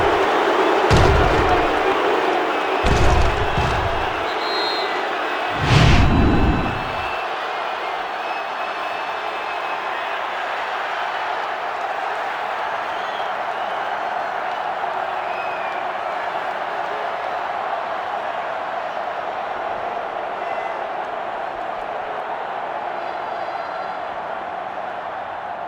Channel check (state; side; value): identical; both; correlation 1.00